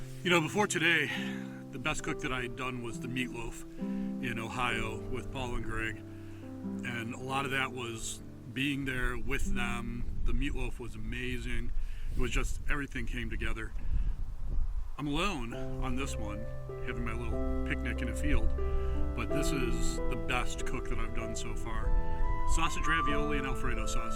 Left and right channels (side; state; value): both; identical; correlation 1.00